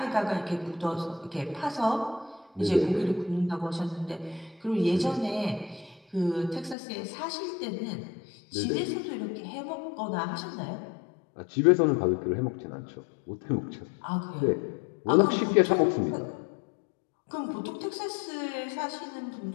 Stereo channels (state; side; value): drops out; right; at 6.8 s